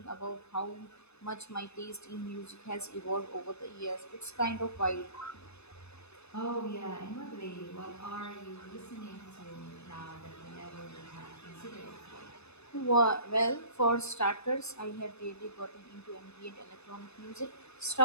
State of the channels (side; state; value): right; late; 0.80 ms